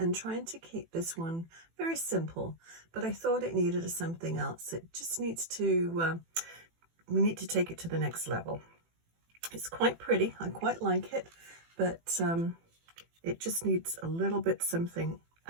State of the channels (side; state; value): left; late; 18 ms